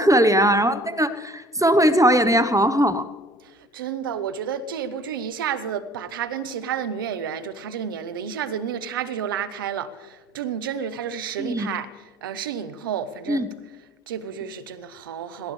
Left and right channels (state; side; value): normal; both; correlation 0.51